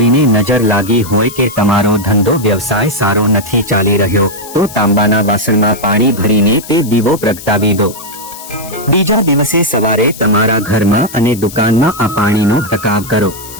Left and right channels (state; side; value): noise; left; hiss, 15 dB below the sound